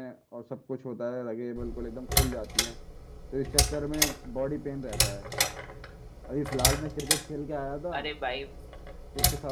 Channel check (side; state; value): both; identical; correlation 1.00